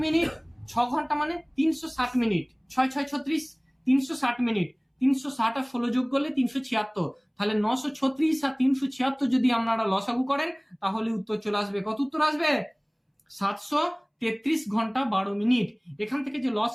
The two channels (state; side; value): identical; both; correlation 1.00